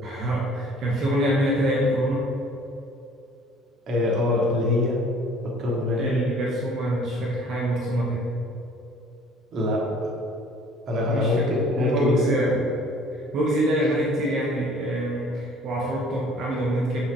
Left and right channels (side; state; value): both; normal; correlation 0.54